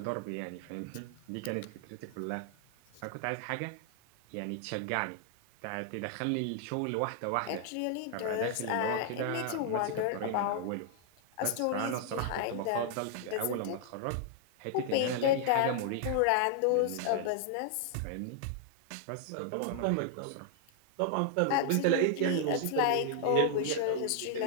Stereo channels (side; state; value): both; different; correlation 0.00